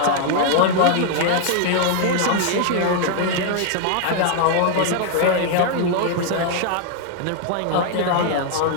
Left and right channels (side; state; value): both; different; correlation 0.00